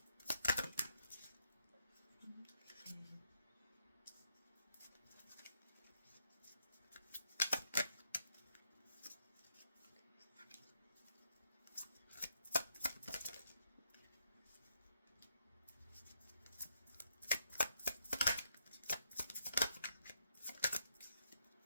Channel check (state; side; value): inverted; both; correlation -0.77